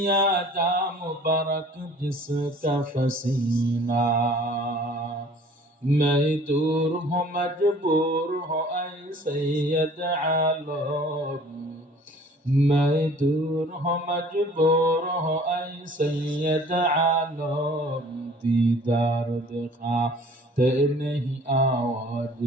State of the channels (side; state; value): both; normal; correlation 0.51